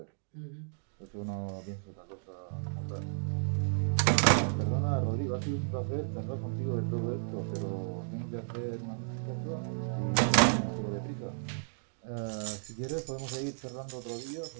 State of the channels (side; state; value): left; silent; digital silence